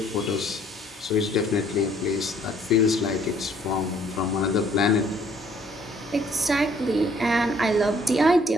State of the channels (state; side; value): normal; both; correlation 0.61